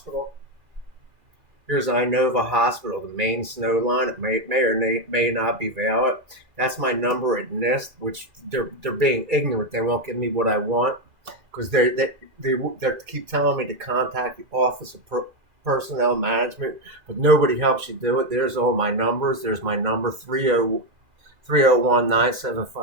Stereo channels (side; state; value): left; late; 2.3 ms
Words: Here's Inova Hospital, the main snow line. It may or may not be valid. That's my number at NIST, which they're being ignorant. They won't give me what I want because they keep telling me to contact the Office of Personnel Management, but nobody helps you do it. There's all my numbers. There's my number